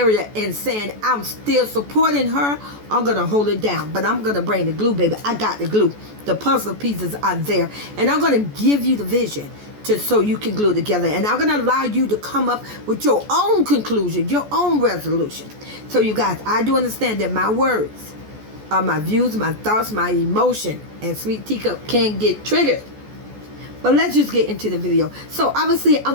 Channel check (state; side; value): late; left; 14 ms